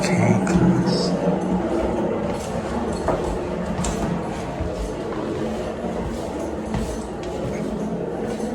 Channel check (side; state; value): both; identical; correlation 1.00